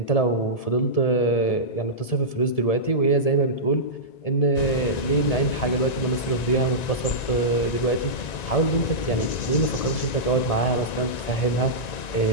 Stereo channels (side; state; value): right; late; 1.9 ms